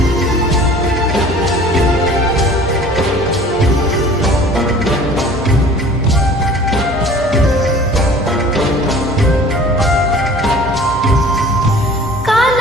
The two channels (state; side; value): normal; both; correlation 0.47